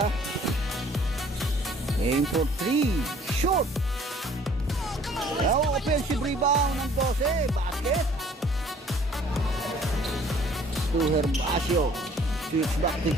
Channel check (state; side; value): normal; both; correlation 0.56